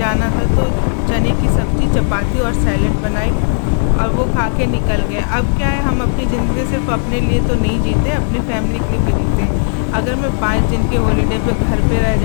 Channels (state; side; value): silent; right; digital silence